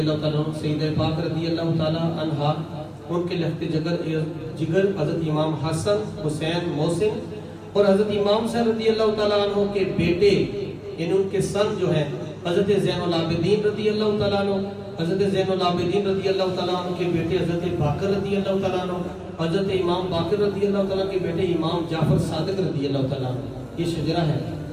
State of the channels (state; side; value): identical; both; correlation 1.00